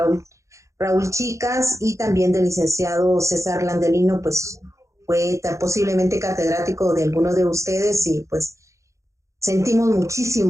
Raúl Chicas y también del licenciado César Landelino, pues fue posiblemente catedrático de algunos de ustedes y pues sentimos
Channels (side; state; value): left; late; 0.15 ms